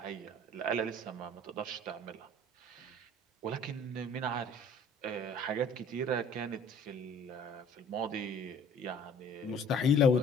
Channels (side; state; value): both; normal; correlation 0.51